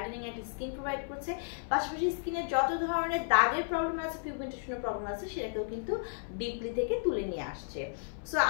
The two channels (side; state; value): right; silent; 56 dB below the other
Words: একটা স্কিন প্রোভাইড করছে। পাশাপাশি স্কিনের যত ধরনের দাগের প্রবলেম আছে, পিগমেন্টেশনের প্রবলেম আছে সেটাকেও কিন্তু ডিপলি থেকে তুলে নিয়ে আসছে। সো